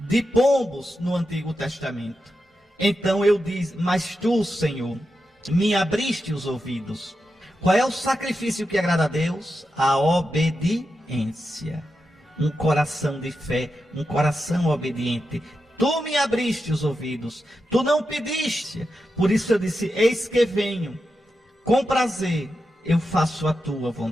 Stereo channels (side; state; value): both; normal; correlation 0.88